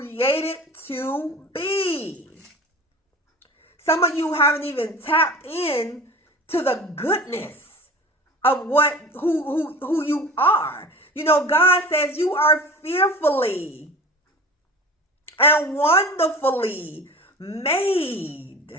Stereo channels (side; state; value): both; normal; correlation 0.36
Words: to be. Some of you haven't even tapped in to the goodness of who you are. God says you are fearfully and wonderfully made.